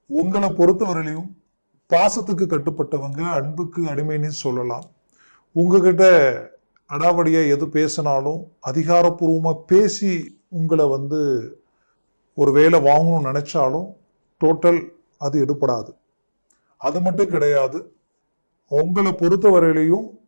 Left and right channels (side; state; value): both; inverted; correlation -1.00